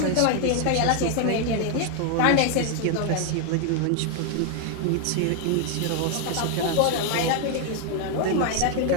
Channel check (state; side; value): different; both; correlation 0.01